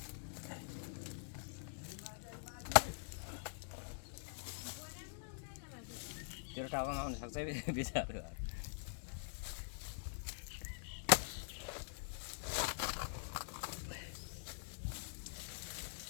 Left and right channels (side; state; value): right; silent; digital silence